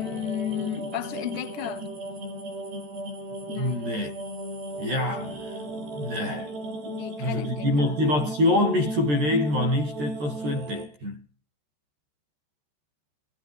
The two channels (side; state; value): left; late; 13 ms